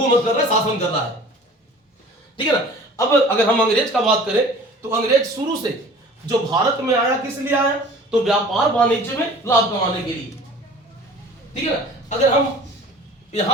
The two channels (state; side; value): normal; both; correlation 0.45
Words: कर रहा है, शासन कर रहा है, ठीक है ना। अब अगर हम अंग्रेज का बात करें तो अंग्रेज शुरू से जो भारत में आया किस लिए आया, तो व्यापार वाणिज्य में लाभ कमाने के लिए, ठीक है ना। अगर हम